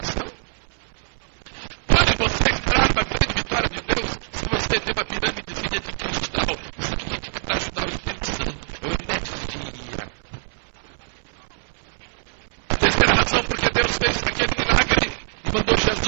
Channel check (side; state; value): left; silent; 63 dB below the other